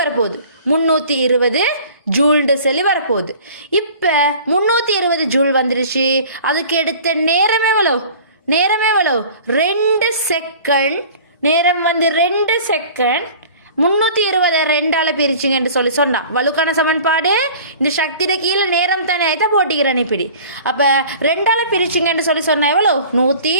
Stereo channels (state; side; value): inverted; both; correlation -0.45